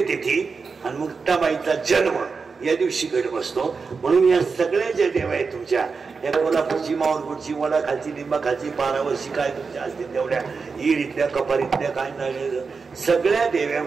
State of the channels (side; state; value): left; quieter; 4.9 dB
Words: आणि मुक्ताबाईचा जन्म या दिवशी घट बसतो म्हणून या सगळ्या ज्या देव आहेत तुमच्या या कोल्हापूरची माऊरपूरची वडा खालची लिंबा खालची पारावरची काय तुमच्या असतील तेवढ्या ईरीतल्या कपारीतल्या काय नाही सगळ्या देव्या